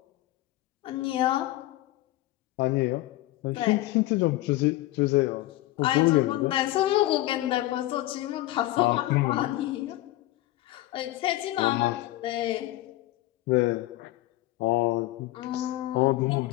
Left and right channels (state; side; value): quieter; right; 16.9 dB